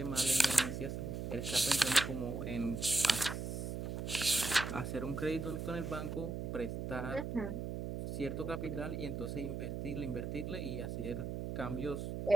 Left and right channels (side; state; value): right; noise; hum, 4 dB below the sound